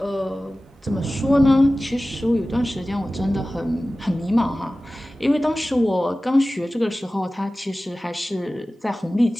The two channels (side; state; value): both; normal; correlation 0.96